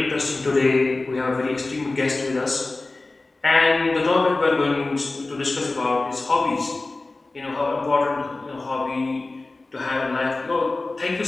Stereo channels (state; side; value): quieter; right; 3.2 dB